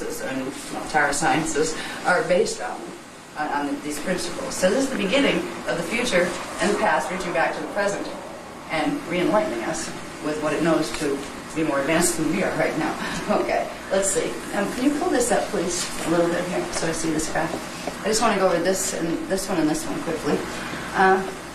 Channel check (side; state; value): both; identical; correlation 1.00